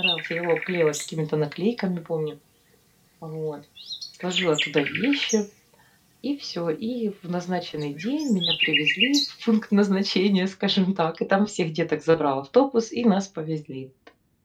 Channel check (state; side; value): identical; both; correlation 1.00